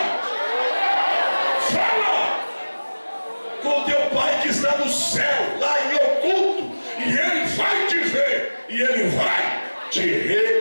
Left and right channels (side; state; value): both; inverted; correlation -1.00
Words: Fala com o teu pai que está no céu, lá em oculto, e ele vai te ver, e ele vai te